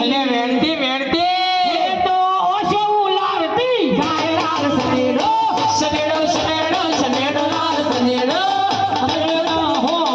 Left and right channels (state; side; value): identical; both; correlation 1.00